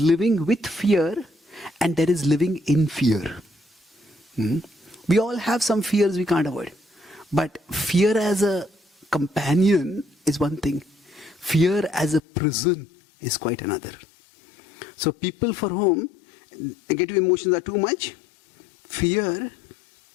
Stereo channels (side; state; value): right; drops out; at 12.2 s